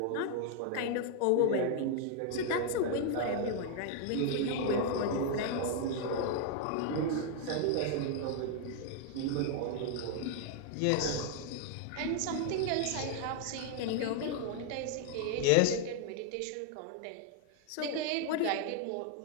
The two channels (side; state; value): both; different; correlation 0.00